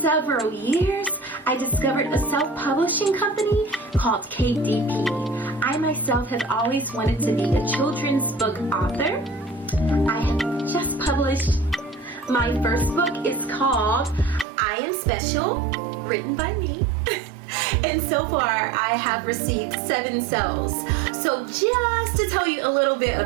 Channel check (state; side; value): drops out; left; at 14.5 s